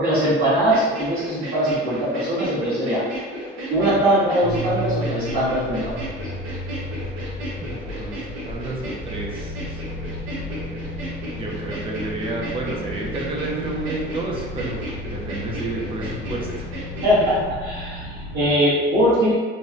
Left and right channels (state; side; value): normal; both; correlation 0.36